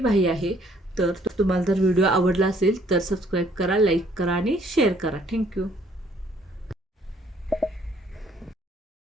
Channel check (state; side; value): normal; both; correlation 0.63